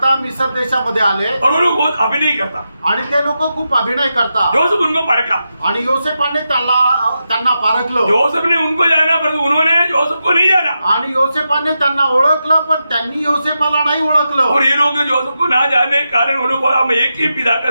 मिस्र देशामध्ये आले और वो लोग बहुत अभिनय करता आणि ते लोक खूप अभिनय करतात। जोसेफ उनको परखा आणि योसेफाने त्यांना पारखलं। जोसेफ ने उनको जाना पर उन्होंने जोसेफ को नहीं जाना आणि योसेफाने त्यांना ओळखलं पण त्यांनी योसेफाला नाही ओळखलं। और ये लोग जोसेफ को ना जाने कारण उन्होंने बोला हम एक ही पिता का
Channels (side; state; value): both; inverted; correlation -0.88